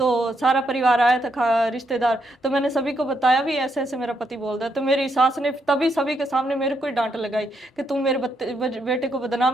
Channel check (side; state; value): both; normal; correlation 0.78